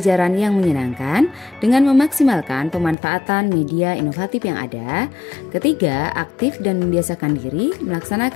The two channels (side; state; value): right; drops out; at 3.0 s